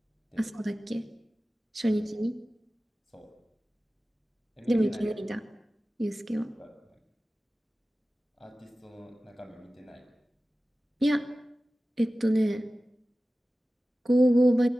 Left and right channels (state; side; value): normal; both; correlation 0.96